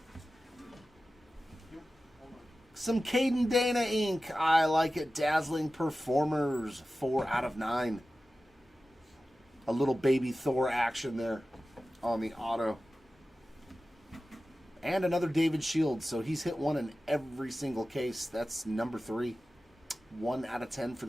Some Caden Dana ink. I like it. Dazzling Performers. 4 out of 9. A little baby Thor action there on the auto. And another David Shields. So he's hit one in every single case. That's number 3. 1 out of 10 for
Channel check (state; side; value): normal; both; correlation 0.95